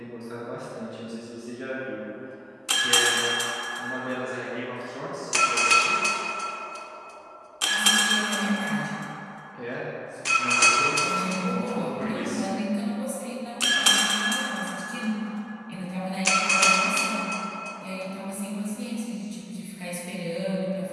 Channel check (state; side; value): identical; both; correlation 1.00